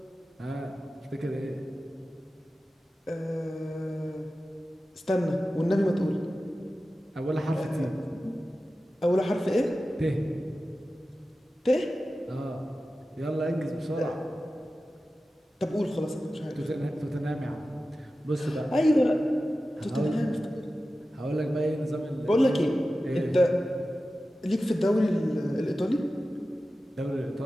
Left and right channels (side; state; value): both; normal; correlation 0.94